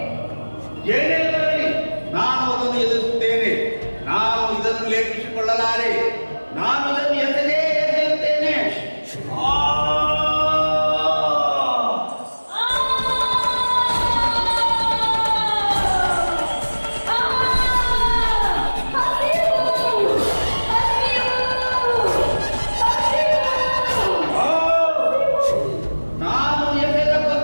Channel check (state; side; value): inverted; both; correlation -1.00